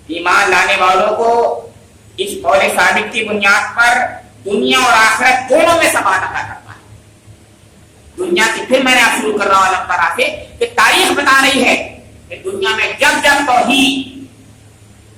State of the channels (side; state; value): both; identical; correlation 1.00